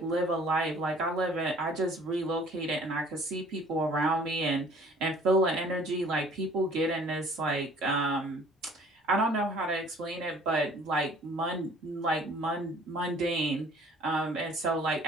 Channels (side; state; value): both; normal; correlation 0.53